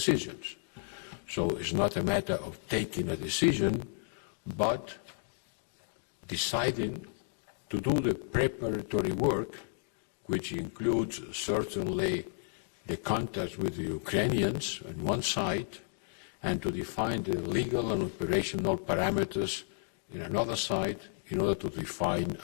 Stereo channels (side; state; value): right; silent; digital silence